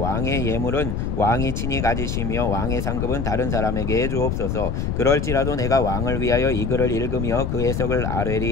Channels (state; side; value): noise; left; rumble, 1 dB below the sound